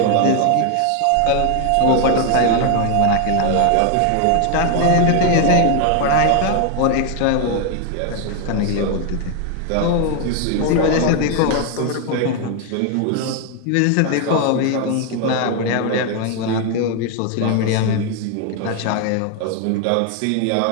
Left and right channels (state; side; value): different; both; correlation 0.01